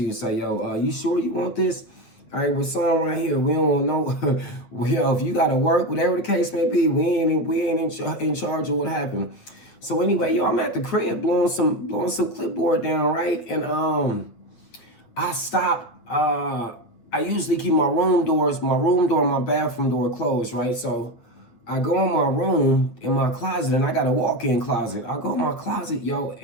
you, say, yo, you sure you want this? All right, we're signing right here. We don't know. Yo, if you got to work, whatever the case may be, we ain't in charge of what happened. So anyway, yo, I'm at the crib blowing some clipboard down, right? And I stopped. I usually keep my room door, my bathroom door closed, right? So I go in my room, in my closet, and I got a walk-in closet. I go in my closet, yo,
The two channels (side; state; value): right; late; 8.7 ms